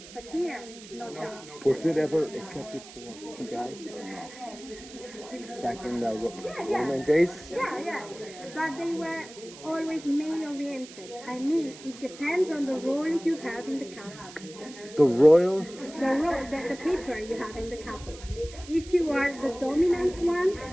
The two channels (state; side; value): noise; right; hiss, 17 dB below the sound